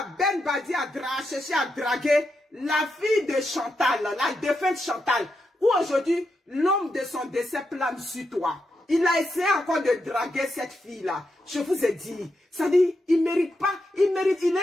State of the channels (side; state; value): both; normal; correlation 0.84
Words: Ben Badi a cherché à draguer la fille de Chantal, la défunte Chantal. Ou aujourd'hui, l'homme de son décès plane sur toi. Il a essayé encore de draguer cette fille-là. Je vous ai dit, ça dit, il mérite pas, il est